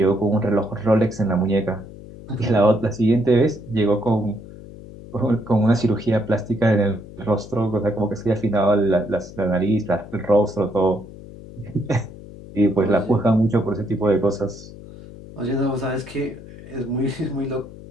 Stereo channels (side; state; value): left; noise; hum, 16 dB below the sound